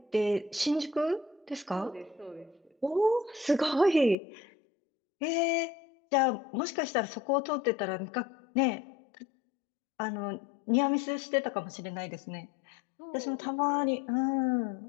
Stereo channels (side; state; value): right; drops out; at 4.2 s